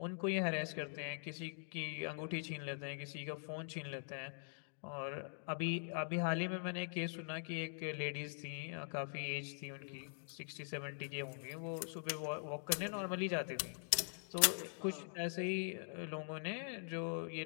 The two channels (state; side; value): silent; right; digital silence